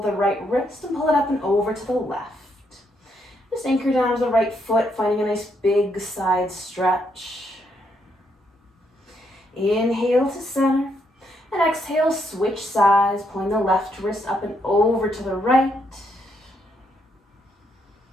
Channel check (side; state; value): both; normal; correlation 0.76